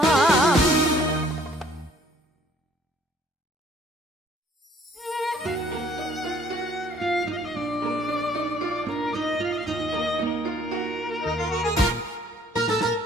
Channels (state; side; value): normal; both; correlation 0.60